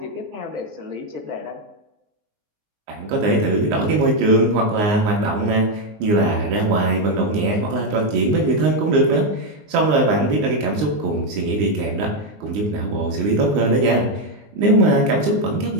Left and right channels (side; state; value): left; late; 19 ms